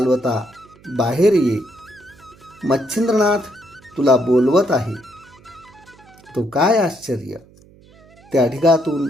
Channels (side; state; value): right; noise; hum, 26 dB below the sound